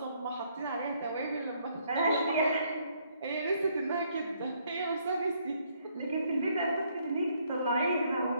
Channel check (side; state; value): both; inverted; correlation -0.69